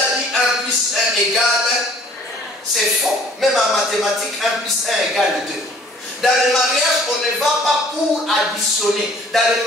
dit 1 plus 1 égale. C'est faux. Même en mathématiques, 1 plus 1 égale 2. Dans le mariage, on ne va pas pour additionner. Dans le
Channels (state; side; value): normal; both; correlation 0.54